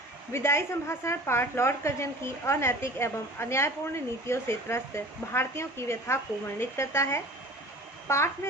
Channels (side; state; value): both; normal; correlation 0.42